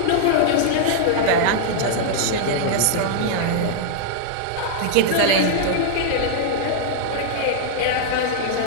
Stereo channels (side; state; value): both; different; correlation -0.01